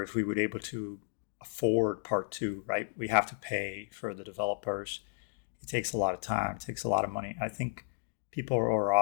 if we would be able to afford Part 2, right? We have to pay for the developers. It takes a lot of time, it takes a lot of money. I think people are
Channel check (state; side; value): silent; right; digital silence